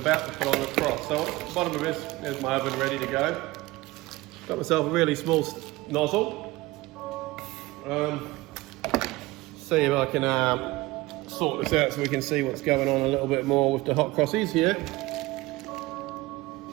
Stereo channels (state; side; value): quieter; left; 19.9 dB